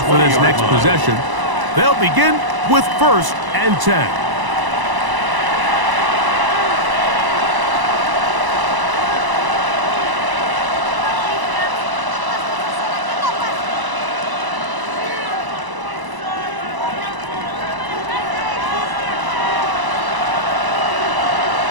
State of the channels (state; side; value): late; left; 1.0 ms